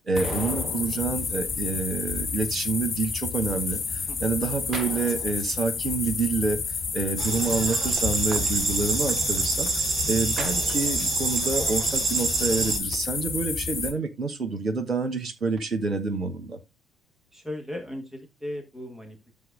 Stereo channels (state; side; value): normal; both; correlation 0.67